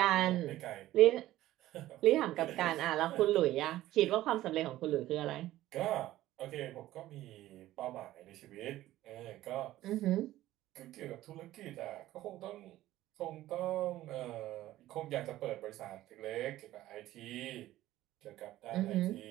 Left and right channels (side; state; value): left; quieter; 15.0 dB